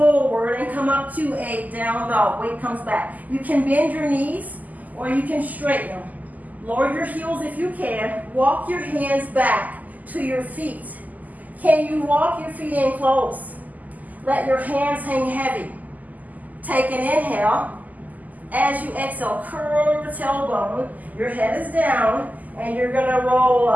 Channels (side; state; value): left; late; 0.080 ms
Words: and come up to a down dog. Weight comes back. You can bend your knees or you can straighten them. Lower your heels if you can. Walk your hands back to your feet. Can you walk your feet in close? Let your hands hang heavy. Take an inhale. As you exhale, curl your tailbone. Your head is down and you're going to roll